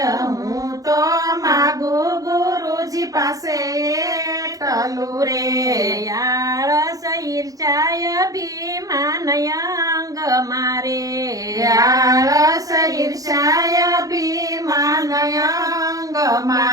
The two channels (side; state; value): left; late; 0.17 ms